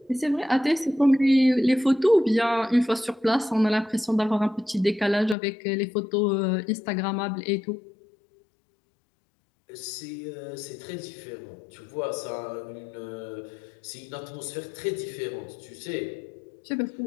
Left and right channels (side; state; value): right; drops out; at 5.4 s